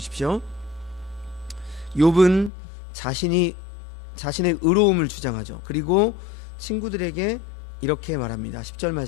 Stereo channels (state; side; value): drops out; right; at 2.5 s